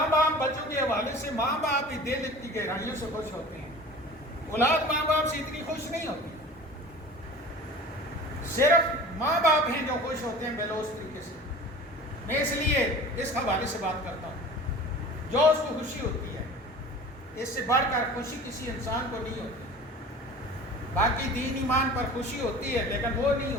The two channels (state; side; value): normal; both; correlation 0.40